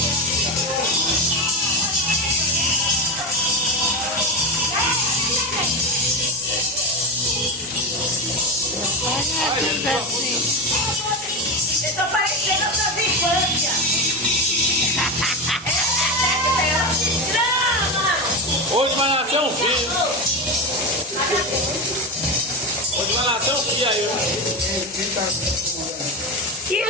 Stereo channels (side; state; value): both; normal; correlation 0.17